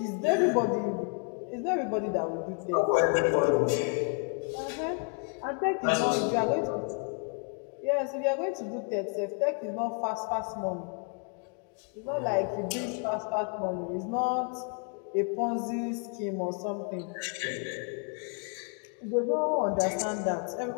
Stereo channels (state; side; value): quieter; right; 38.8 dB